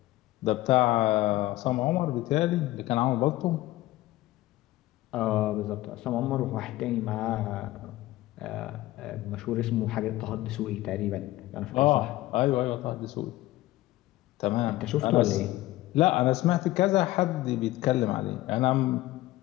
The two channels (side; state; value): right; quieter; 17.0 dB